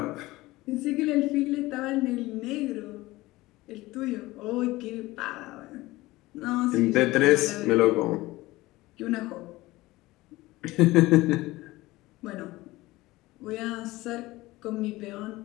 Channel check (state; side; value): quieter; right; 19.2 dB